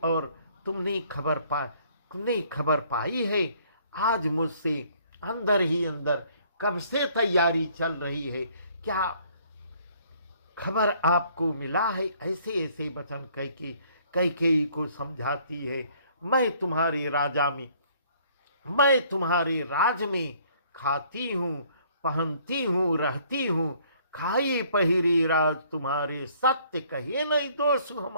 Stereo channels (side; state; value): both; inverted; correlation -0.61